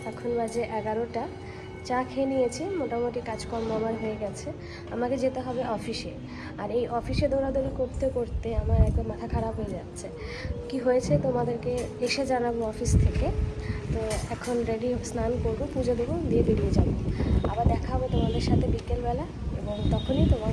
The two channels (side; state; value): both; identical; correlation 1.00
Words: এখন বাজে 11টা। চা খেয়ে নিয়েছি, মোটামুটি কাজকর্ম আমার হয়ে গেছে। আমাকে যেতে হবে অফিসে, আর এই অফিসে দৌড়াদৌড়ি করতে করতে আমার একদম মাথা খারাপ হয়ে যাচ্ছে। কি হয়েছে তোমাদেরকে এসে জানাবো অফিস থেকে। তো এখন রেডি, স্নান করবো, পুজো দেবো, দিয়ে বেরিয়ে যাবো। আবার দেখা হবে তোমাদের সাথে বিকেলবেলা, এবং তখনই